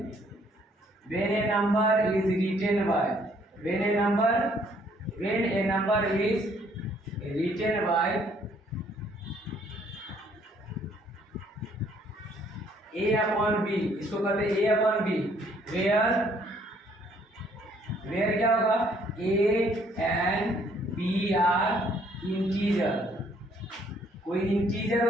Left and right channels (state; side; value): normal; both; correlation 0.64